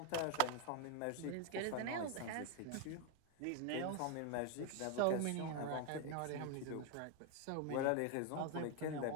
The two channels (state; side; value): different; both; correlation 0.01